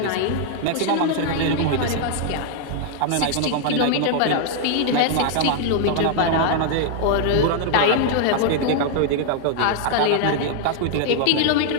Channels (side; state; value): both; different; correlation 0.00